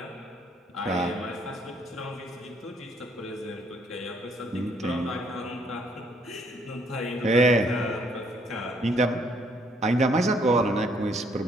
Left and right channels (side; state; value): both; normal; correlation 0.66